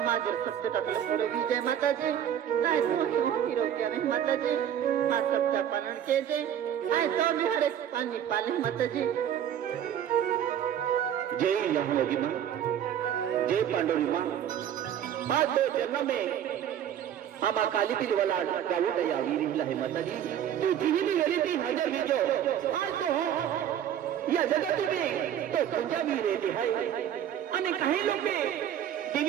माझे शब्द टाकलं पुढे विजय माताजी काय तो हिरोग्या नाही माताजी हा शब्द पालन केले काय तो मी हरे पाणी पाले माताजी जय लहानोगी माँ जय पांडुरी माँ आज दो जन्म में हम काली पीली वाला गावो दया वीर है माताजी तू जिही भी गेली ती हजर विजो आज तो या जगत में तो तुझ्या वीर येते है आणि काही लोक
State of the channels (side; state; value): left; quieter; 10.0 dB